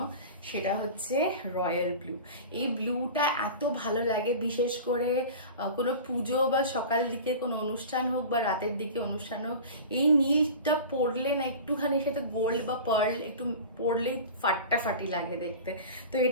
সেটা হচ্ছে রয়্যাল ব্লু। এই ব্লুটা এত ভালো লাগে, বিশেষ করে কোনো পুজো বা সকাল দিকে কোনো অনুষ্ঠান হোক বা রাতের দিকে অনুষ্ঠান হোক, এই নীলটা পরলে না একটুখানি সাথে গোল্ড বা পার্ল একটু পরলেই ফাটাফাটি লাগে দেখতে। তো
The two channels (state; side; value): inverted; both; correlation -0.35